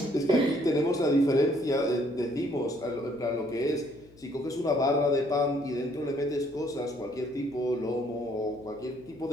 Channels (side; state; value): left; noise; hum, 26 dB below the sound